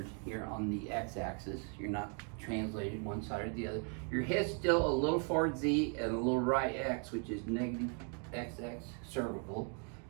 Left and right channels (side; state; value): left; quieter; 39.8 dB